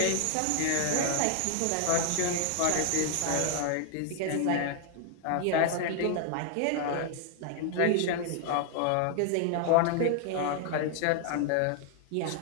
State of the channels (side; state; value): both; different; correlation 0.00